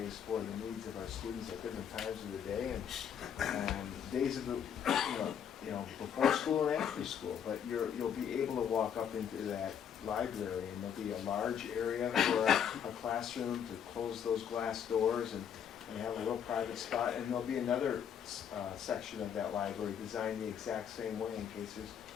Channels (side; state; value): right; quieter; 8.4 dB